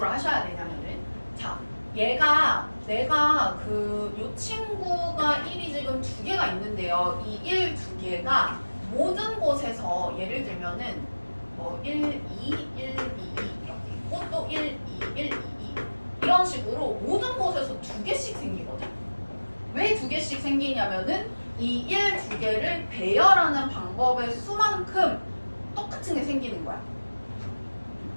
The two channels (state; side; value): inverted; both; correlation -1.00